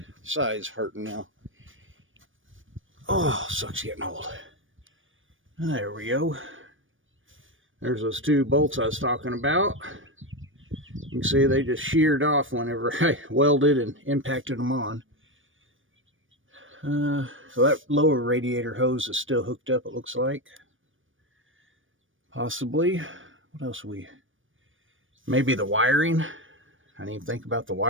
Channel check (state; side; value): late; left; 0.57 ms